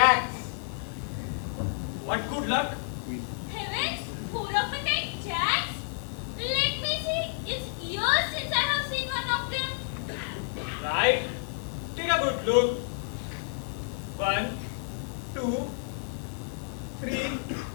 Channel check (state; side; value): silent; right; digital silence